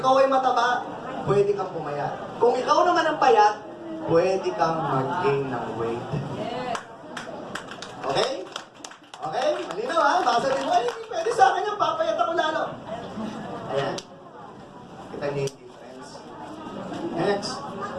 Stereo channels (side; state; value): both; identical; correlation 1.00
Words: ay mataba, pwede kang pumayat. Kung ikaw naman ang payat, pwede kang mag-gain ng weight. Okay? Okay? Malinaw ha? Baka sabihin mo, ay, hindi pwede sa akin yung papayat ako lalo. Ayan. Kita niyo yung difference. Next.